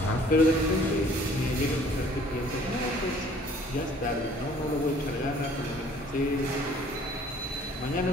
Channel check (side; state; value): both; normal; correlation 0.55